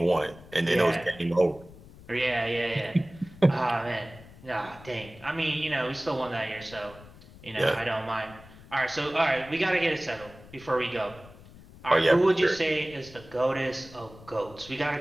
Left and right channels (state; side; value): noise; left; rumble, 20 dB below the sound